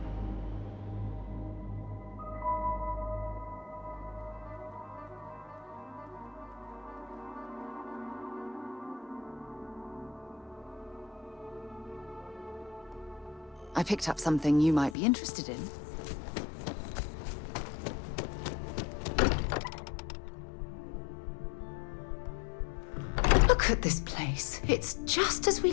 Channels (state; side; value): drops out; right; at 15.0 s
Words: I picked up something you might be interested in. Look at this place. It's just as we